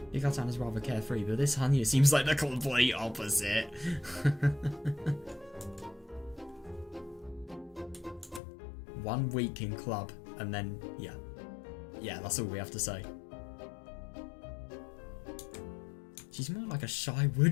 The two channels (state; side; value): drops out; right; at 8.4 s